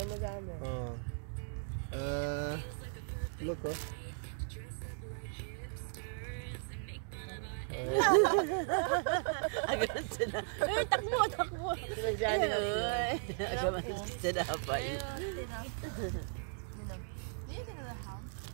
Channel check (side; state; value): left; silent; digital silence